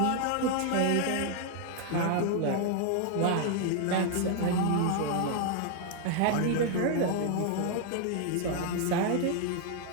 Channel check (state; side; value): different; both; correlation 0.00